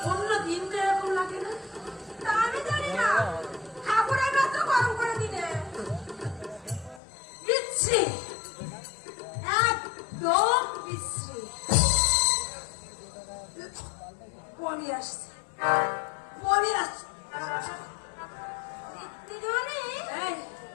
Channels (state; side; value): drops out; right; at 7.0 s